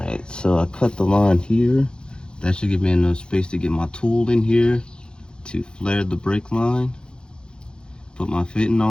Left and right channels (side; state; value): right; late; 0.049 ms